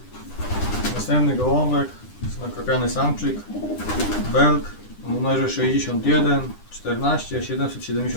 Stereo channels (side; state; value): right; late; 9.9 ms